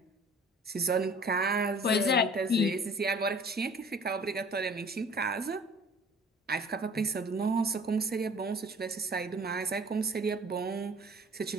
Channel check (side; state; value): both; normal; correlation 0.49